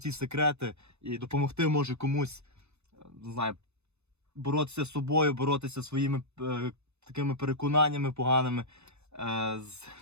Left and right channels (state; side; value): late; left; 0.81 ms